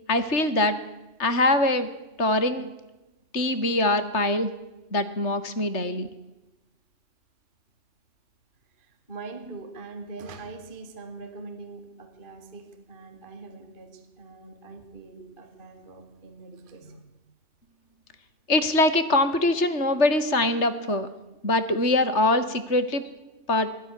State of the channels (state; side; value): late; right; 3.3 ms